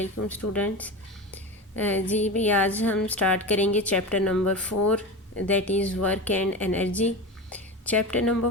स्टूडेंट्स। जी भी आज हम स्टार्ट करेंगे chapter number 4 that is work and energy. Chapter number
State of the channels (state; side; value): normal; both; correlation 0.25